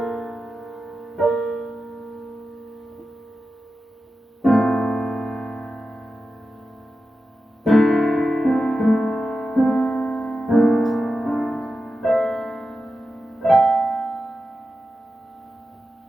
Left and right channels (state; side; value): normal; both; correlation 0.92